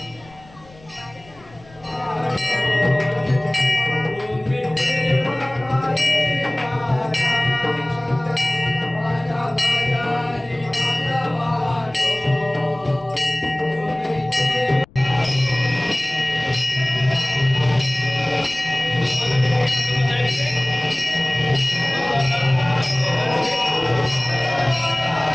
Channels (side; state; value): left; noise; rumble, 25 dB below the sound